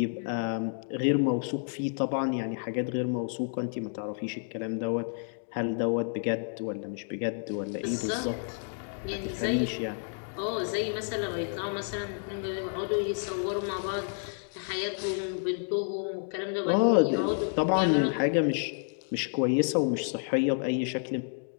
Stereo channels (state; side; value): silent; right; 58 dB below the other